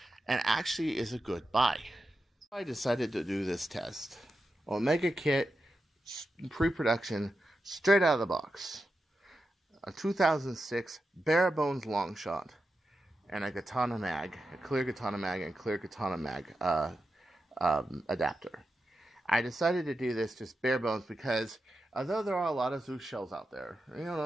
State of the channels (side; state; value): both; normal; correlation 0.90